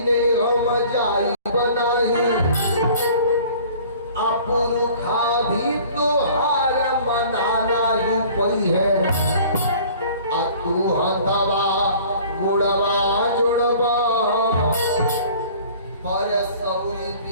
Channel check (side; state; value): both; inverted; correlation -0.49